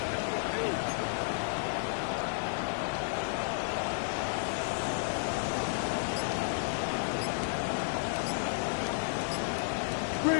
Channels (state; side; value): silent; right; 56 dB below the other